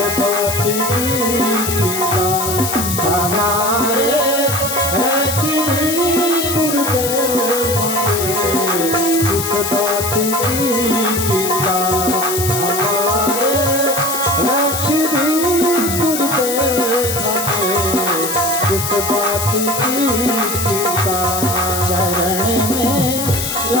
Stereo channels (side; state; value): left; noise; hiss, 3 dB below the sound